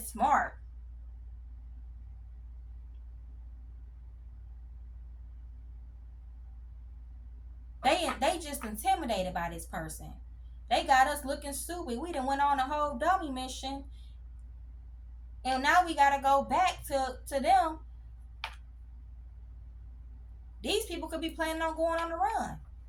smart. They just intimidated by this person. They got us looking stupid. We done went on a whole dummy mission. And now we gotta go back to them. These people could be planning on going on the run.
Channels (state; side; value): identical; both; correlation 1.00